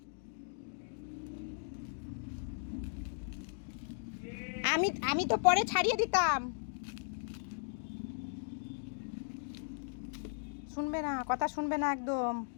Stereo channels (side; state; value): right; silent; digital silence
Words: আমি তো পরে ছাড়িয়ে দিতাম। শুনবে না, কথা শুনবে না একদম,